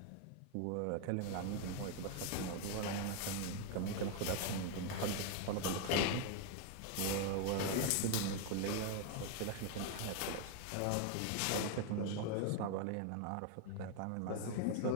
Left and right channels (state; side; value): different; both; correlation 0.01